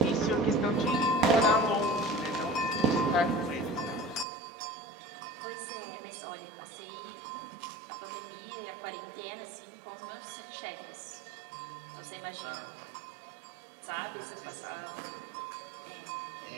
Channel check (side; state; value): left; drops out; at 4.2 s